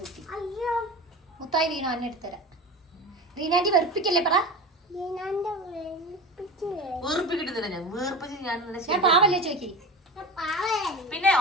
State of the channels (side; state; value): both; normal; correlation 0.30